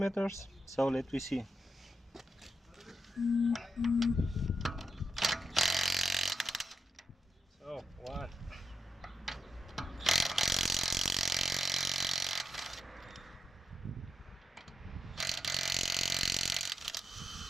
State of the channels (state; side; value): normal; both; correlation 0.86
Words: so let me see. So one.